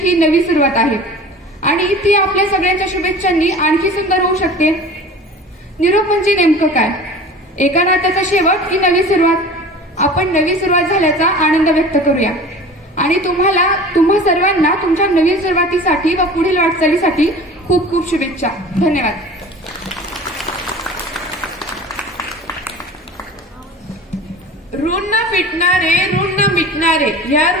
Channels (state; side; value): normal; both; correlation 0.39